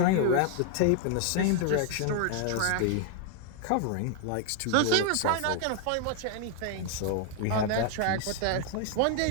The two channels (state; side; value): different; both; correlation 0.00